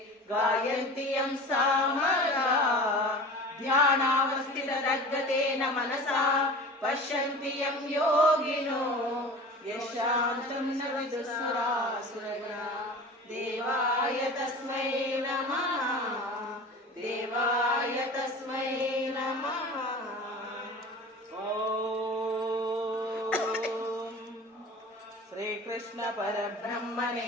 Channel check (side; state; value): both; normal; correlation 0.37